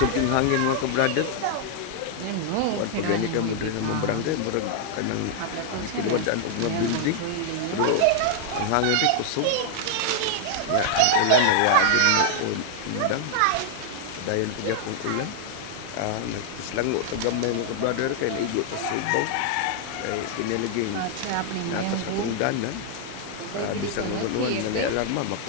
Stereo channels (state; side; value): different; both; correlation -0.01